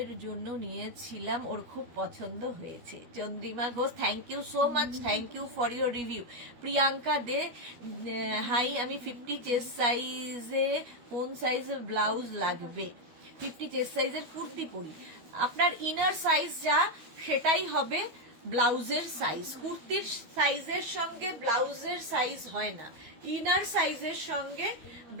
জন্য নিয়েছিলাম, ওর খুব পছন্দ হয়েছে। Chandrima Ghosh, thank you so much, thank you for your review. Priyanka De, hi, আমি 50 চেস্ট সাইজে কোন সাইজের ব্লাউজ লাগবে? 50 চেস্ট সাইজের কুর্তি পরি, আপনার ইনার সাইজ যা সেটাই হবে ব্লাউজের সাইজ। কুর্তির সাইজের সঙ্গে ব্লাউজের সাইজ হয় না, ইনার সাইজের সঙ্গে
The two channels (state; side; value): late; left; 12 ms